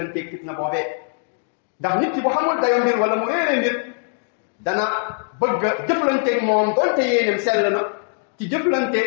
fitna boobee ndax nit ki bu xamul dayo mbir wala mu réere mbir dana bëgg a jëflanteeg moom doonte yéenem sell na ci jëflante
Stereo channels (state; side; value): silent; right; 65 dB below the other